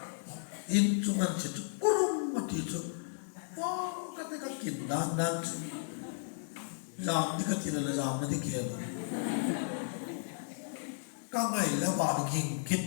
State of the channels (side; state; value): right; silent; digital silence